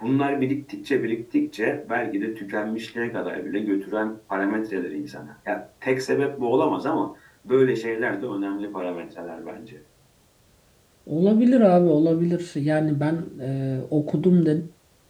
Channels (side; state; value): both; identical; correlation 1.00